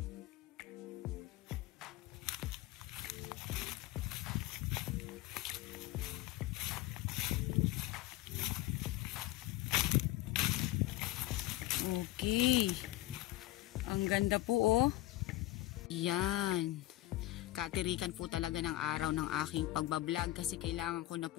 Okay. Ang ganda po, oh. Yan. Katirikan po talaga ng araw ng aking pagbablog kasi kailangan ko na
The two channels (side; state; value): right; quieter; 16.8 dB